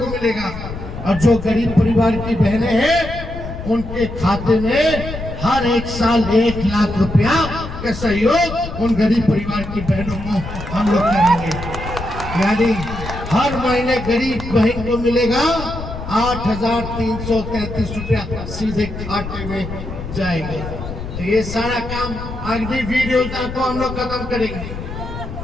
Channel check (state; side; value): noise; left; rumble, 9 dB below the sound